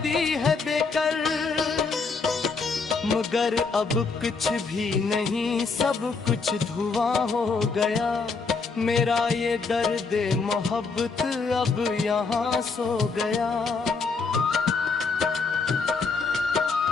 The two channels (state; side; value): quieter; right; 4.6 dB